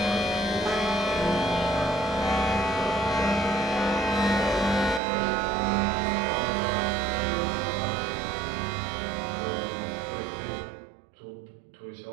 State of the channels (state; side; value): drops out; left; at 5.0 s